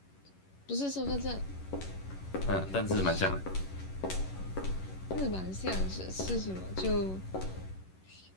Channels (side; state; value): right; late; 11 ms